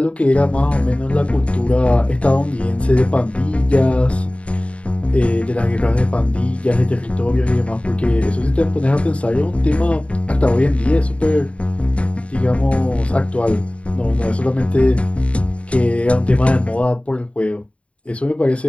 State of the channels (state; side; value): late; right; 0.062 ms